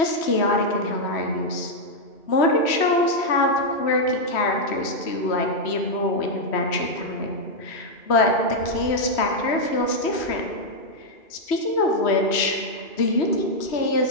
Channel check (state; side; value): late; right; 3.1 ms